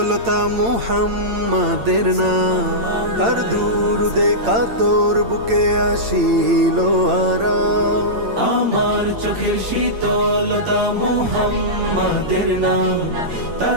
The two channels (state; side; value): late; left; 8.8 ms